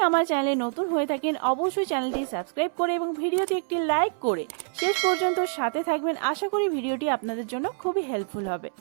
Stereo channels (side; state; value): left; silent; 61 dB below the other